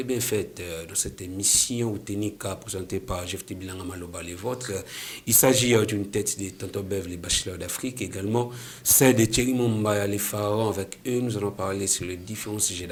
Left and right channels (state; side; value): identical; both; correlation 1.00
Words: bien faites dans cette émission ou Ténika présentée par Jeff Bilanga Maloba les vôtres. Il s'agit d'une tête de Tonton Bev, les bachelors d'Afrique, également celle de Thierry Mombaya, les pharaons. Avec eux, nous allons parler sur les différents sujets